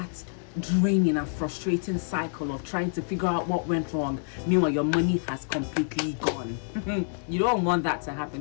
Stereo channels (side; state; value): right; silent; 60 dB below the other